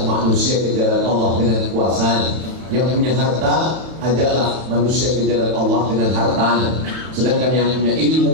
manusia ke jalan Allah dengan kekuasaan. Yang punya harta, ajaklah manusia ke jalan Allah dengan hartanya. Sedangkan yang punya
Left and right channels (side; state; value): left; late; 31 ms